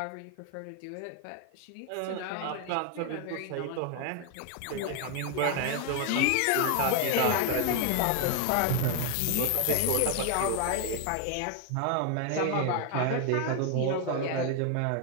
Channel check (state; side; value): different; both; correlation 0.00